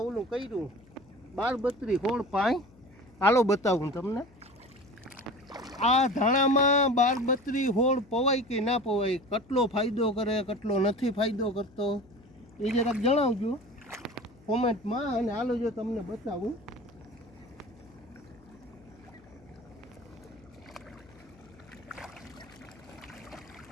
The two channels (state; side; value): noise; left; hum, 26 dB below the sound